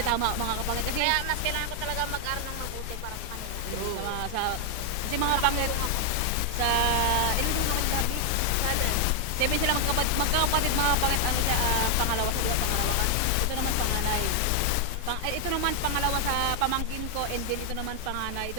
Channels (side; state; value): both; different; correlation 0.00